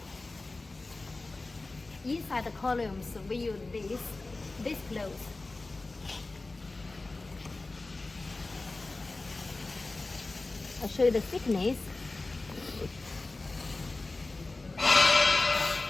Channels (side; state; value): right; quieter; 3.3 dB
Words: Inside the columns, we use this clothes. I'll show you the thickness.